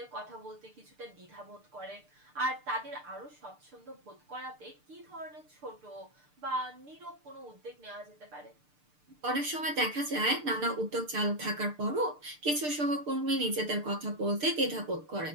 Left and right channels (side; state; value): left; late; 6.7 ms